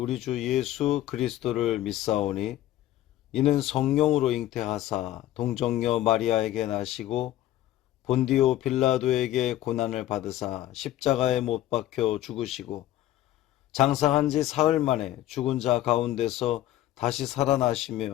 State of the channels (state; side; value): quieter; right; 13.8 dB